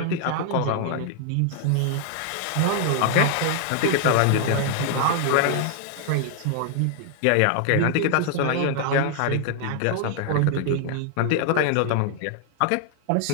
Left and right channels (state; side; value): different; both; correlation 0.00